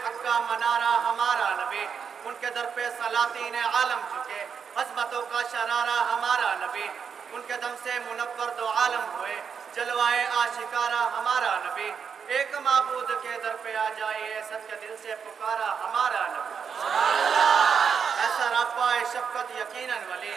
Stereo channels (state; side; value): quieter; left; 6.7 dB